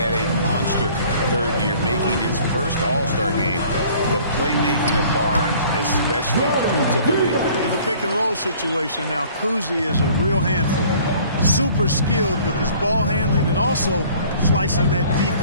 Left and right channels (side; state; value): both; inverted; correlation -0.52